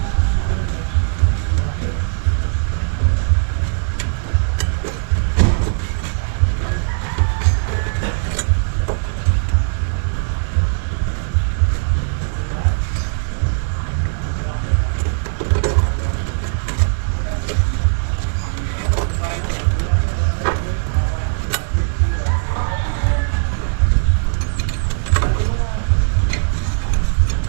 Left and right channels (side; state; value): left; silent; 66 dB below the other